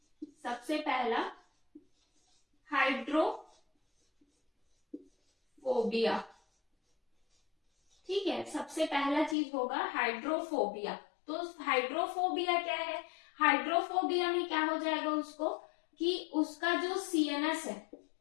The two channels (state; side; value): drops out; right; at 9.3 s